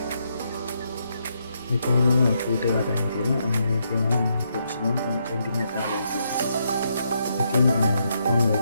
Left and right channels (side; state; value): both; inverted; correlation -0.78